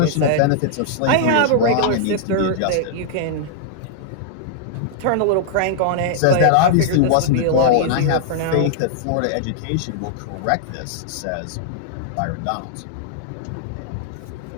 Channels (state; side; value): different; both; correlation -0.01